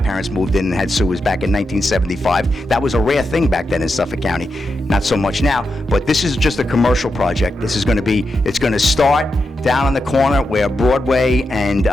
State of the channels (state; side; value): normal; both; correlation 0.87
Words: moved in and had sewers back in 1975. That was a rare thing back then in Suffolk County. Not so much now, but this is just a commercial project. This is going to be, it's going to start. down on the corner where Broadway and